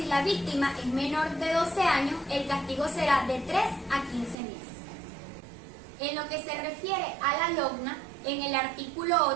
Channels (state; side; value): drops out; left; at 4.4 s